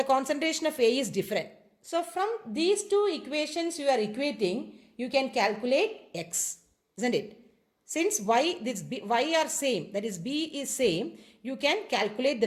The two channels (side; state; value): both; identical; correlation 1.00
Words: concentration of A is different. So from these two equations you are equating, you can calculate x, isn't it? Since y are same, that is B is same, you can calculate the